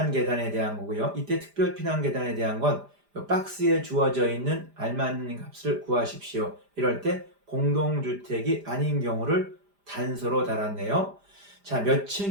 계단에 대한 거고요. 이때 특별 피난 계단에 대한 건 박스에 주어져 있는 알맞는 값을 구하십시오. 이럴 때 공동주택이 아닌 경우를 단서로 달았네요. 자, 몇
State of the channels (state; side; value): late; left; 5.0 ms